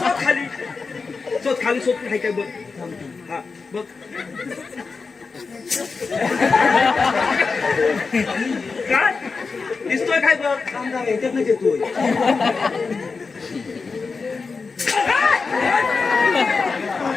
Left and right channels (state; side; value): quieter; right; 4.6 dB